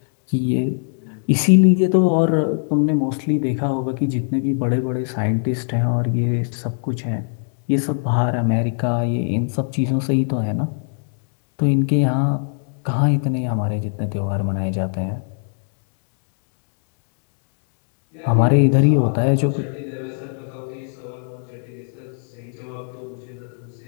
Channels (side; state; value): right; silent; digital silence